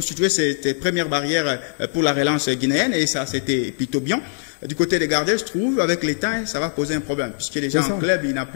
ces premières barrières pour la relance guinéenne et ça, c'était plutôt bien. Du côté des gardiens, je trouve, avec les temps, ça va poser un problème puisque déjà en club, il n'a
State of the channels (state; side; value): silent; right; digital silence